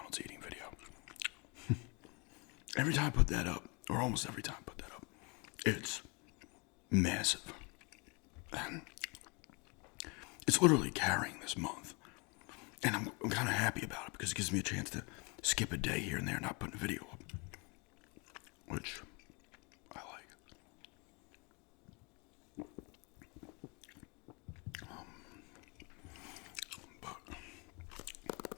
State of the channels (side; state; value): right; quieter; 30.8 dB